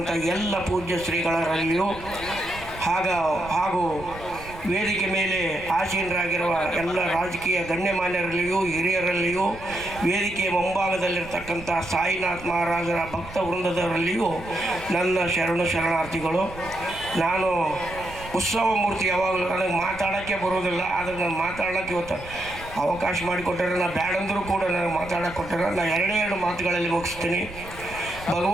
ಎಲ್ಲ ಪೂಜ್ಯ ಶ್ರೀಗಳರಲ್ಲಿಯೂ ಹಾಗೂ ವೇದಿಕೆ ಮೇಲೆ ಆಸೀನರಾಗಿರುವ ಎಲ್ಲ ರಾಜಕೀಯ ಗಣ್ಯಮಾನ್ಯರಲ್ಲಿಯೂ ಹಿರಿಯರಲ್ಲಿಯೂ ವೇದಿಕೆಯ ಮುಂಭಾಗದಲ್ಲಿರ್ತಕ್ಕಂಥ ಸಾಯಿನಾಥ್ ಮಹಾರಾಜರ ಭಕ್ತ ವೃಂದದವರಲ್ಲಿಯೂ ನನ್ನ ಶರಣಾರ್ಥಿಗಳು. ನಾನು ಉತ್ಸವ ಮೂರ್ತಿ ಯಾವಾಗಲೂ ನನಗೆ ಮಾತಾಡೋಕ್ಕೆ ಬರೋದಿಲ್ಲ, ಆದರೆ ನಾನು ಮಾತಾಡೋಕ್ಕೆ ಇವತ್ತು ಅವಕಾಶ ಮಾಡಿಕೊಟ್ಟರೆ ನಾನು ಬ್ಯಾಡಂದರೂ ಕೂಡ ನನಗೆ ಮಾತಾಡೋಕ್ಕೆ ಕೊಟ್ಟರೆ ನಾನು ಎರಡೇ ಮಾತುಗಳಲ್ಲಿ ಮುಗಿಸ್ತೀನಿ.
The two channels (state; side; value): noise; right; rumble, 16 dB below the sound